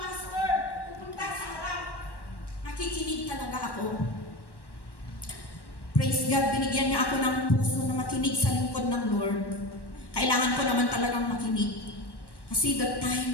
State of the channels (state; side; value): late; right; 1.1 ms